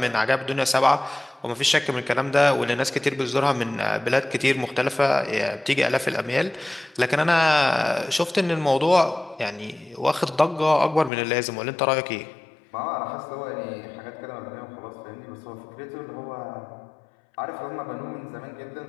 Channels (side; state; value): right; drops out; at 11.1 s